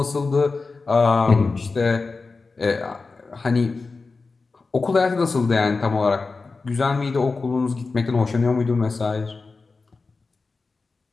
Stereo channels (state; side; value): quieter; right; 4.1 dB